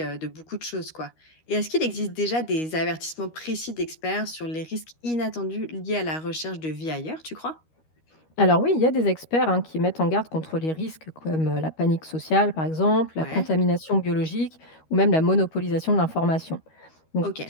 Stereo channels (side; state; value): right; late; 13 ms